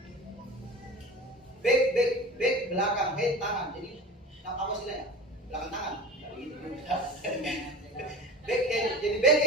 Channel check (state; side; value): normal; both; correlation 0.33